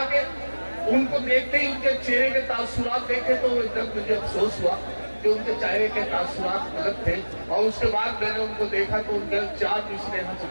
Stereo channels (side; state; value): both; inverted; correlation -1.00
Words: के, उनको देखते ही उनके चेहरे के तासुरात देखे तो एकदम मुझे अफसोस हुआ कि उनके चेहरे के तासुरात गलत थे। और उसके बाद मैंने उनको देखा तो उनके 4 मिसरे यहाँ